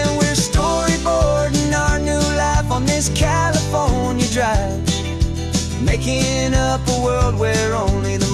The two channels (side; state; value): both; identical; correlation 1.00